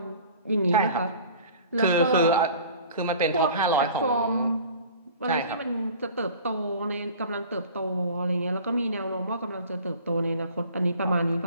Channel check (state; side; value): inverted; both; correlation -0.45